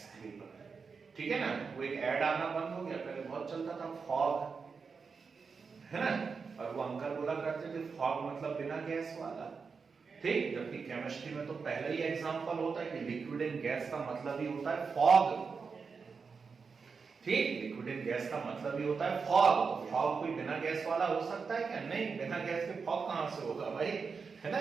ठीक है ना? वो एक ऐड आना बंद हो गया, पहले बहुत चलता था, फॉग, है ना? और वो अंकल बोला करते थे फॉग मतलब बिना गैस वाला। ठीक, जबकि केमिस्ट्री में तो पहले ही एग्जांपल होता है कि लिक्विड इन गैस का मतलब ही होता है फॉग। ठीक, लिक्विड इन गैस का मतलब ही होता है फॉग। फॉग कोई बिना गैस वाला हो सकता है क्या? नहीं, बिना गैस के फॉग कहां से होगा भाई, है ना?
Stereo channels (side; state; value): left; quieter; 5.2 dB